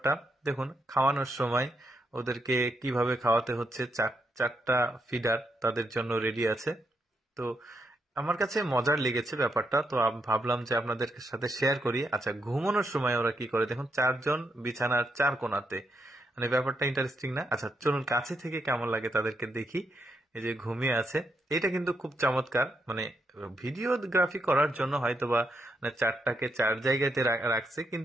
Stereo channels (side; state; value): both; normal; correlation 0.79